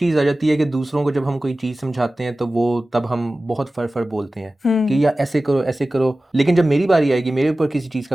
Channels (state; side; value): normal; both; correlation 0.96